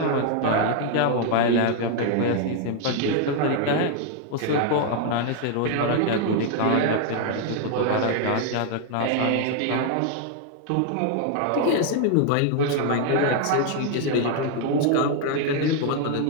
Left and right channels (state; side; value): different; both; correlation 0.00